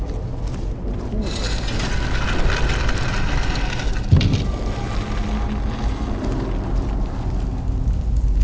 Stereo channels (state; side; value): identical; both; correlation 1.00